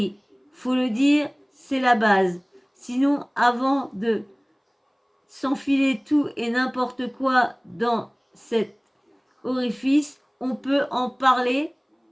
faut le dire, c'est la base. Sinon, avant de s'enfiler tout et n'importe quoi dans cet orifice, on peut en parler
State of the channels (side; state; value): both; identical; correlation 1.00